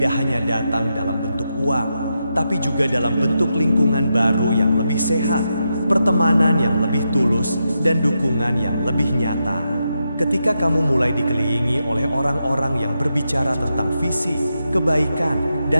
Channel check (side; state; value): both; inverted; correlation -0.86